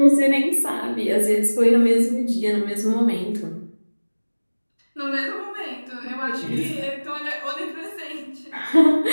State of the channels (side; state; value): both; inverted; correlation -1.00